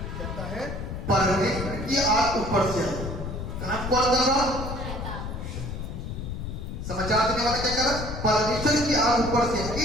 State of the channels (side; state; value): left; noise; rumble, 6 dB below the sound